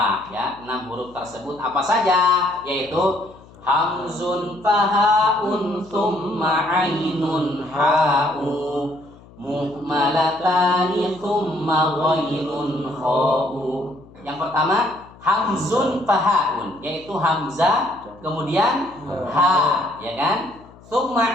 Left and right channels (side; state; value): left; noise; hum, 23 dB below the sound